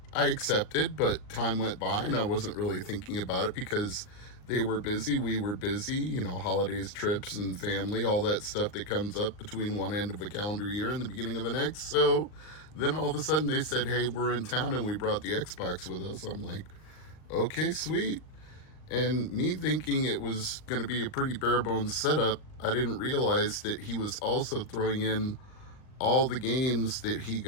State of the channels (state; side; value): late; right; 39 ms